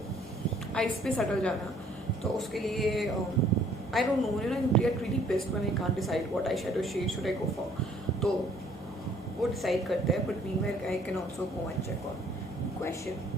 आइस पे सटल जाना, तो उसके लिए I don't know, I get really pissed when I can't decide what I shadow shade should I go for. तो वो डिसाइड करते हैं, but meanwhile I can also go and check on question.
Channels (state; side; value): normal; both; correlation 0.60